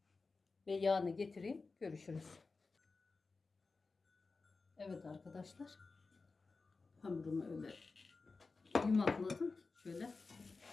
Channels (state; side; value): quieter; right; 4.1 dB